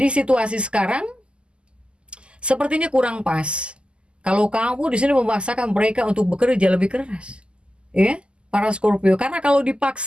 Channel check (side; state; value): left; late; 0.051 ms